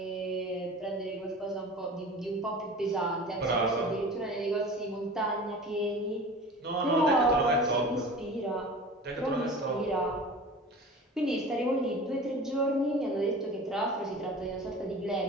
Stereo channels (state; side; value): normal; both; correlation 0.38